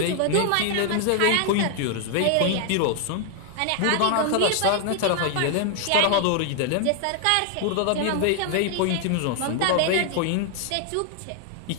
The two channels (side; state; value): both; different; correlation 0.00